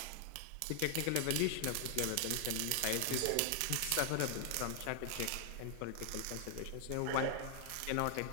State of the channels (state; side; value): different; both; correlation 0.00